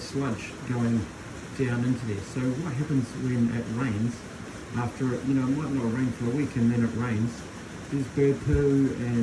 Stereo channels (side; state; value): both; identical; correlation 1.00